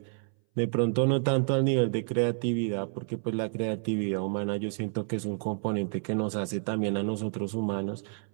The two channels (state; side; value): silent; left; 58 dB below the other